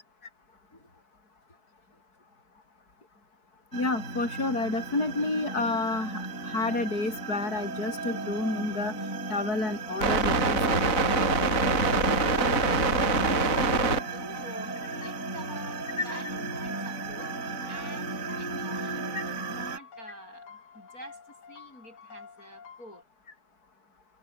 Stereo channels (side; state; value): right; late; 4.0 ms